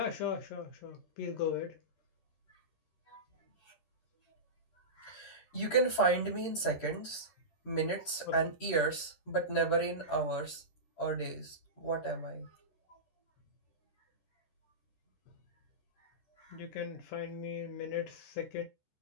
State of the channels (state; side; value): late; right; 13 ms